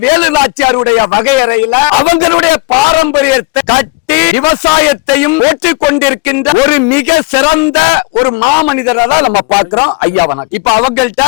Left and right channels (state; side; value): quieter; right; 26.4 dB